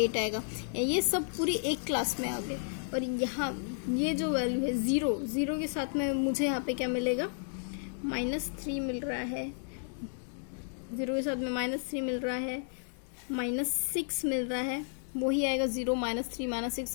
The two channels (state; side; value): silent; right; digital silence